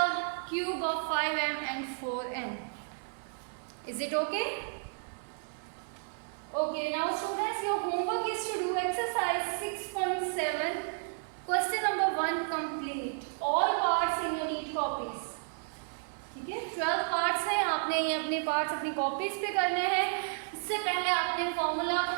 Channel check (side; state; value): left; silent; digital silence